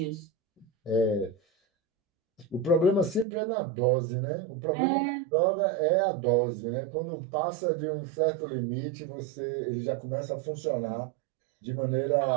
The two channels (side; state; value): left; drops out; at 3.2 s